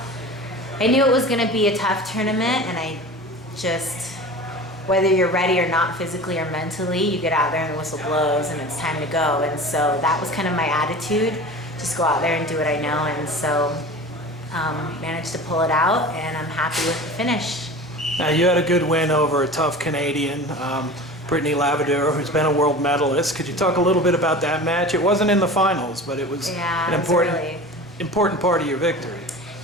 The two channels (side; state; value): both; normal; correlation 0.36